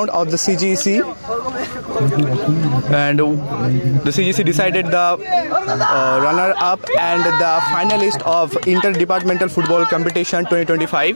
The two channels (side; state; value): both; inverted; correlation -1.00